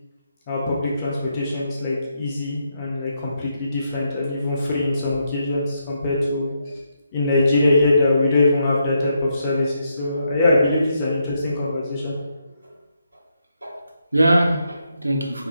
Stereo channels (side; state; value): both; inverted; correlation -0.80